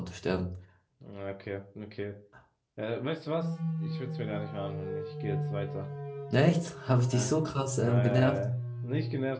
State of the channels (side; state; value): both; identical; correlation 1.00